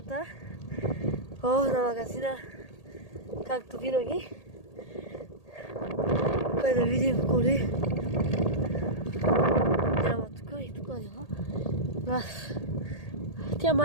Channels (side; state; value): right; late; 1.8 ms